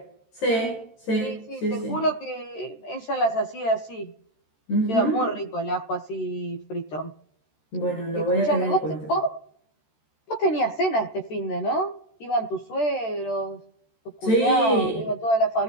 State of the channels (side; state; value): right; late; 13 ms